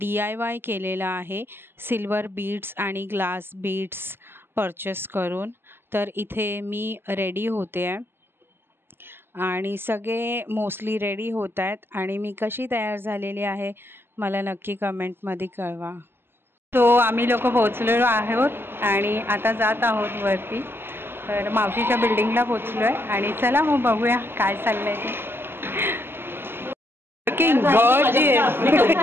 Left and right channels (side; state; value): left; late; 0.11 ms